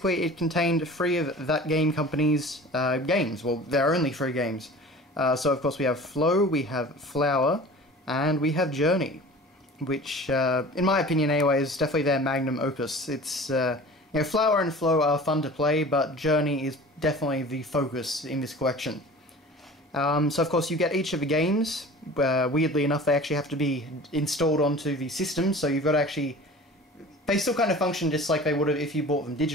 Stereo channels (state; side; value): normal; both; correlation 0.41